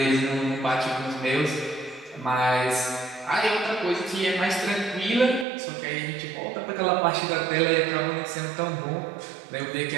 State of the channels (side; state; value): left; drops out; at 5.5 s